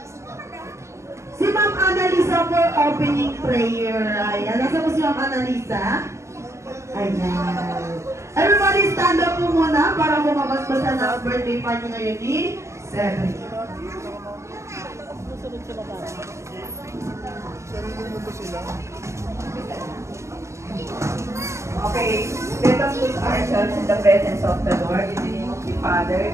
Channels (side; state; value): left; late; 0.14 ms